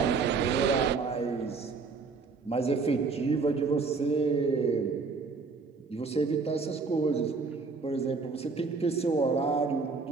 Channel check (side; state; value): left; quieter; 4.5 dB